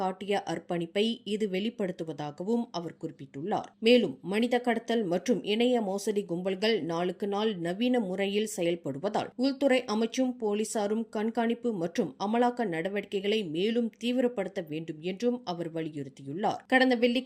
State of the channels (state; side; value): identical; both; correlation 1.00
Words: காட்டிய அர்ப்பணிப்பை இது வெளிப்படுத்துவதாகவும் அவர் குறிப்பிட்டுள்ளார். மேலும் மனித கடத்தல் மற்றும் இணைய மோசடி கும்பல்கள் நாளுக்கு நாள் நவீன முறையில் செயல்படுவதால் உள்துறை அமைச்சும் போலீசாரும் கண்காணிப்பு மற்றும் அமலாக்க நடவடிக்கைகளை மேலும் தீவிரப்படுத்த வேண்டும் என்றும் அவர் வலியுறுத்தியுள்ளார். கடந்த